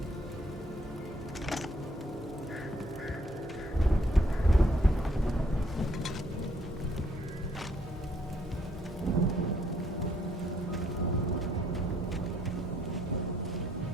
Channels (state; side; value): normal; both; correlation 0.68